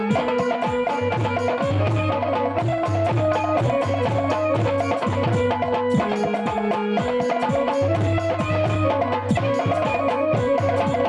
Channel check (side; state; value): both; identical; correlation 1.00